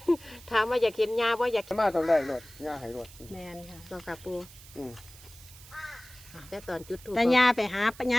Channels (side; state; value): right; noise; hiss, 20 dB below the sound